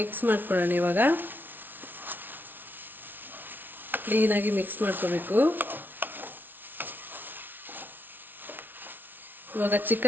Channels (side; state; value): left; late; 0.092 ms